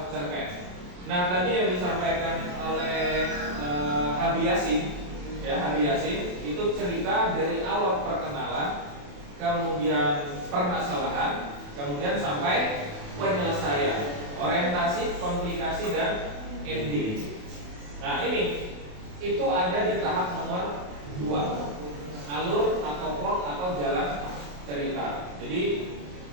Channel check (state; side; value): late; left; 28 ms